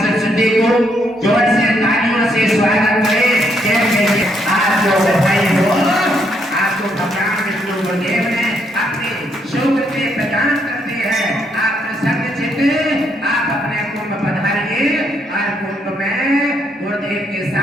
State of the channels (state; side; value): normal; both; correlation 0.74